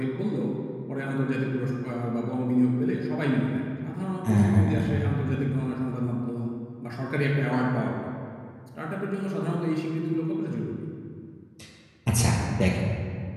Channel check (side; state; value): both; identical; correlation 1.00